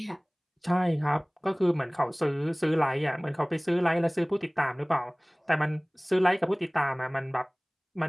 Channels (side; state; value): both; identical; correlation 1.00